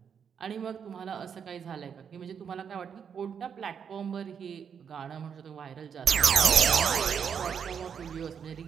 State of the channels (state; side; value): quieter; left; 7.3 dB